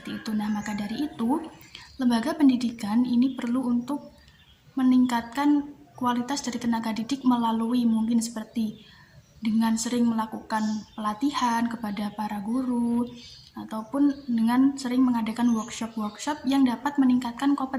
itu. Nah, maka dari itu, lembaga pendidikan ini perlu untuk meningkatkan kualitas dari tenaga didik melalui mungkin seperti dengan sering melakukan pelatihan kepada para guru, ataupun dengan sering mengadakan workshop-workshop yang dapat meningkatkan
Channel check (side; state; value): both; identical; correlation 1.00